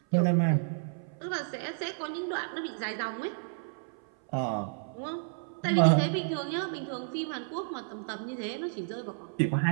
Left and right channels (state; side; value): silent; left; 57 dB below the other